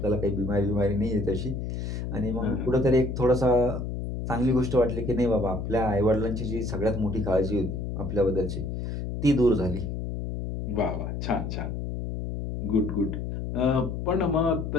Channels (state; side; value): noise; left; hum, 4 dB below the sound